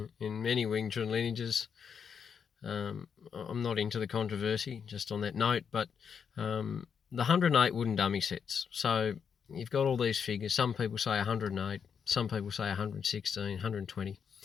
in many Wing Chun lineages. I'm not into the controversy, just on that note, but the 108 wooden dummy sets. So you've got all these figures. Some people say 108, some people say 116, 120.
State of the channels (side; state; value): right; quieter; 6.9 dB